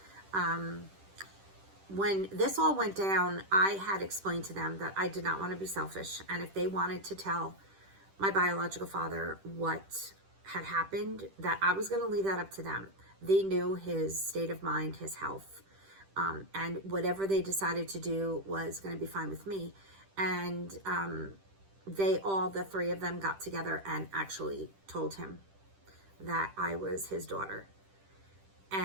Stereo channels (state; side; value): late; left; 10 ms